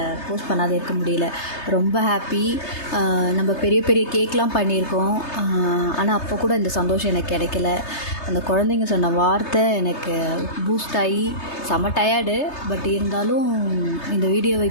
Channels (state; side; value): late; right; 3.3 ms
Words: போஸ்ட் பண்ணாத இருக்க முடியல. ரொம்ப ஹாப்பி. நம்ம பெரிய பெரிய கேக்லாம் பண்ணியிருக்கோம், ஆனால் அப்போ கூட இந்த சந்தோஷம் எனக்கு கிடைக்கல. அந்த குழந்தைங்க சொன்ன வார்த்தை எனக்கு பூஸ்ட் ஆகி செம டயர்டு. பட் இருந்தாலும் இந்த வீடியோவை